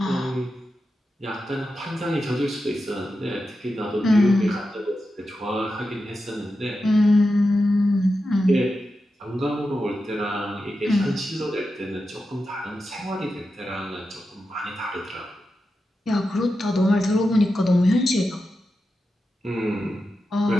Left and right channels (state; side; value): normal; both; correlation 0.90